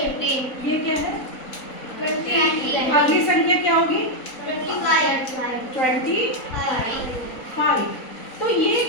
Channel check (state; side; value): late; right; 3.9 ms